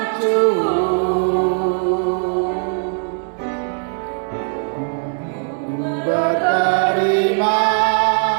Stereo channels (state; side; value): silent; left; 56 dB below the other